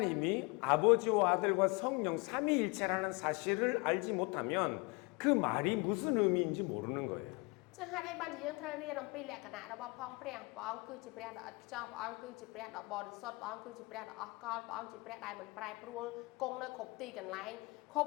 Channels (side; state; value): right; quieter; 27.7 dB